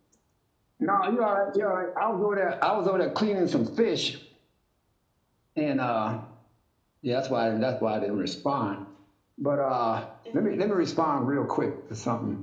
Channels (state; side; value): identical; both; correlation 1.00